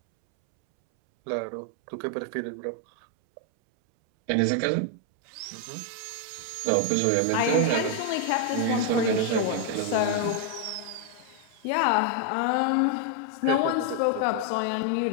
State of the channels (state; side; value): different; both; correlation 0.01